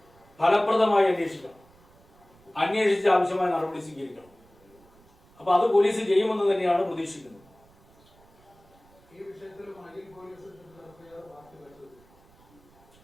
ഫലപ്രദമായി അന്വേഷിക്കണം, അന്വേഷിച്ച് ആവശ്യമായ നടപടി സ്വീകരിക്കണം. അപ്പൊ അത് പോലീസ് ചെയ്യുമെന്ന് തന്നെയാണ് പ്രതീക്ഷിക്കുന്നത്.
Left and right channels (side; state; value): right; noise; rumble, 29 dB below the sound